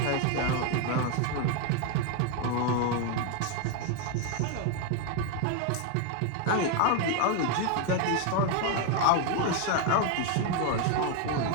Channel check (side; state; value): both; different; correlation 0.01